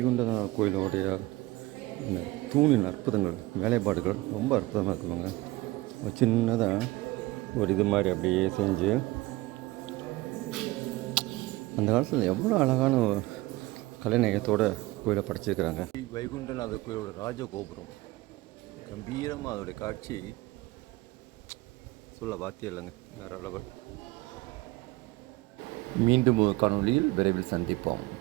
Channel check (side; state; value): left; quieter; 20.0 dB